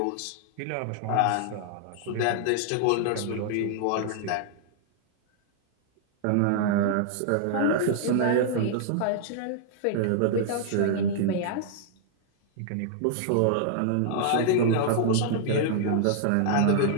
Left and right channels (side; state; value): both; different; correlation -0.01